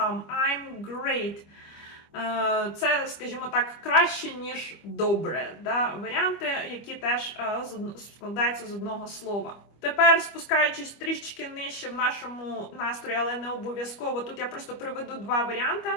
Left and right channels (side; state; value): right; late; 25 ms